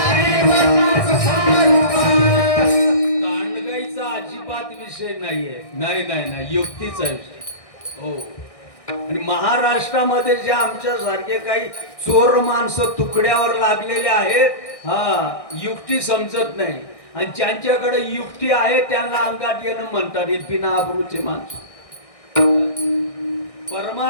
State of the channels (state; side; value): late; right; 1.6 ms